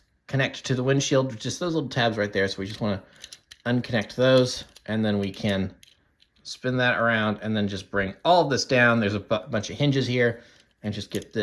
connect to the windshield, just those little tabs right there. So we just want to unconnect those, and then we can spin that around and then just bring all of this down. There's a bunch of hinges here, and just get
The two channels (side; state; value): both; identical; correlation 1.00